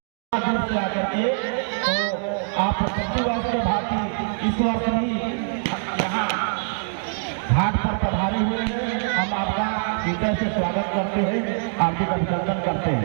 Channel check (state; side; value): silent; left; digital silence